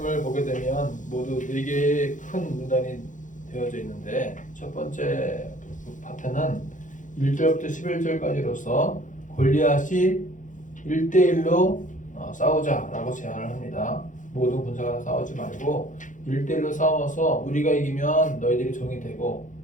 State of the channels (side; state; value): right; late; 0.37 ms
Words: 보게 되면 모두 4개의 큰 문단이 되어져 있는데, 첫 번째 파트는 1절부터 11절까지로서 골리앗이 1대1로 싸우자라고 제안을 합니다. 모든 군사가 싸우지 말고 1대1로 싸워서 우리가 이기면 너희들이 종이 되고